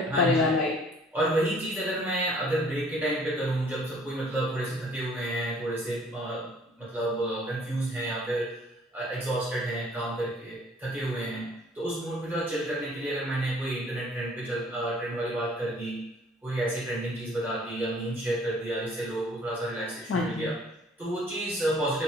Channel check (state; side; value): normal; both; correlation 0.56